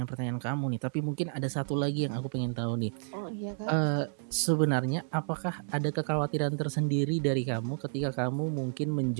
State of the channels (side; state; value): left; silent; 57 dB below the other